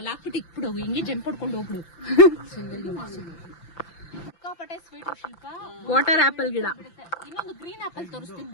ಹಾಕ್ಬಿಟ್ಟು ಇಟ್ಬಿಡು, ಹಿಂಗೆ ಜಂಪ್ ಹೊಡ್ಕೊಂಡು ಹೋಗ್ಬಿಡು. ಸಿಕ್ಕಾಪಟ್ಟೆ ಸ್ವೀಟ್ ಶಿಲ್ಪ. ವಾಟರ್ ಆಪಲ್ ಗಿಡ. ಇನ್ನೊಂದು ಗ್ರೀನ್ ಆಪಲ್ ತೋರಿಸ್ತೀನಿ.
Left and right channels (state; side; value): late; right; 5.9 ms